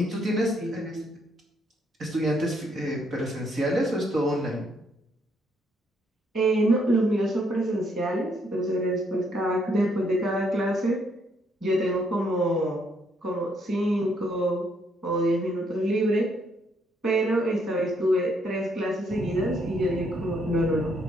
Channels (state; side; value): normal; both; correlation 0.71